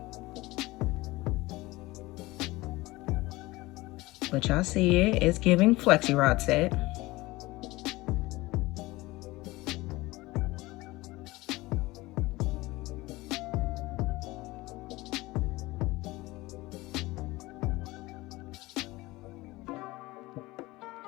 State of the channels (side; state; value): right; quieter; 20.3 dB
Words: But y'all see it, it's giving Flexi Rod set.